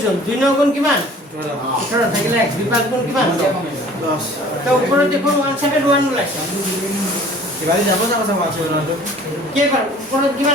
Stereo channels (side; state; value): both; normal; correlation 0.49